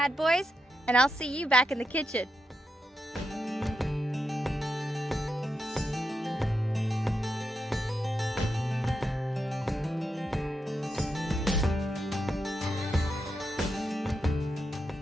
boys, and I'll see you back in the kitchen.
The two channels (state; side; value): normal; both; correlation 0.85